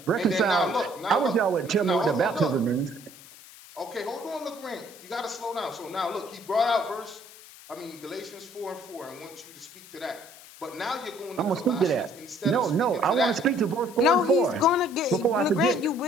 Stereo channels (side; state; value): left; noise; hiss, 19 dB below the sound